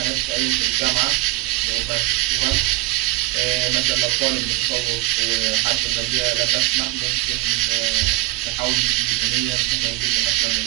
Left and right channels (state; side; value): quieter; left; 18.7 dB